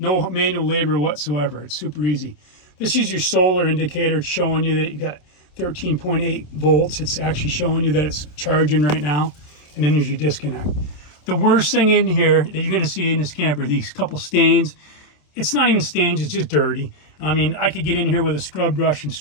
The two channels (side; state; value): right; late; 27 ms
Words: manual labor whatsoever. It's super easy. This is your solar indicator. It's showing you that you got 13.8 volts. It's actually showing you that it's charging right now. And then there's your disconnect. The worst thing in here that you're going to see in this camper, these couple stains. It's not even stains, it's just dirty. I mean, I could get in here with a scrub brush and